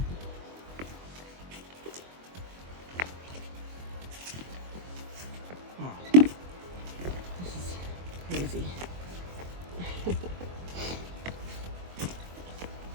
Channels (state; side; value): late; left; 23 ms